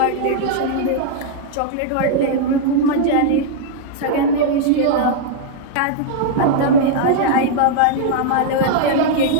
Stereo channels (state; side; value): different; both; correlation -0.01